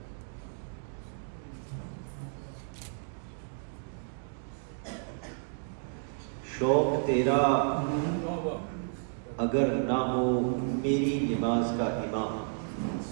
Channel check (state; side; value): silent; left; digital silence